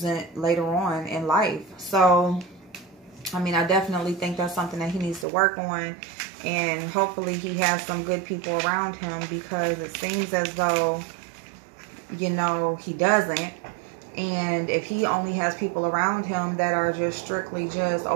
later on in life. So, I mean, I definitely think that's something that he needs to work on. And hopefully he has some good people around him, because it seems as though, you know, he doesn't. And if he only has people around him that are just strictly just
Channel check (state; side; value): drops out; left; at 5.2 s